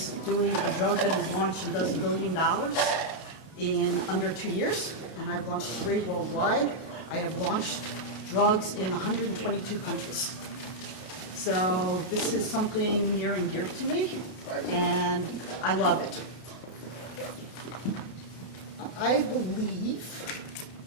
doing a drug that is launched and does $1 billion in under 2 years. And I've launched 3 worldwide. I have launched drugs in 122 countries. So this is something near and dear to me, and I love it. I believe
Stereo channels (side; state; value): right; late; 32 ms